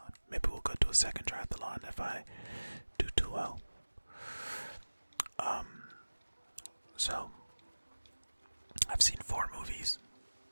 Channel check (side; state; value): both; inverted; correlation -1.00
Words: Maybe we'll go to a second triathlon if I do too well. So I've seen 4 movies